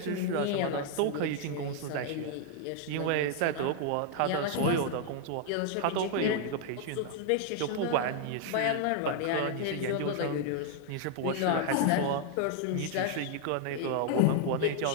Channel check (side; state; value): both; different; correlation 0.00